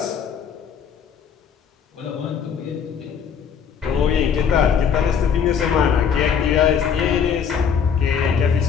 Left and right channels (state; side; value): quieter; right; 7.2 dB